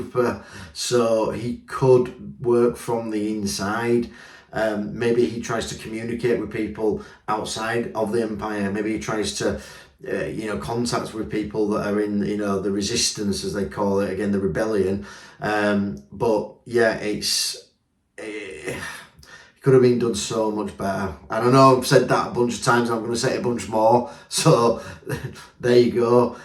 so he could work from the inside. Maybe he tries to communicate with people outside of the Empire. Maybe he tries to you know, contacts with people that are in, you know, the resistance, as they call it, again, the rebellion. But yeah, it could have been done so much better. And I know I've said that a bunch of times, and I'm going to say it a bunch more. So there you go.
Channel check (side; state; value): both; identical; correlation 1.00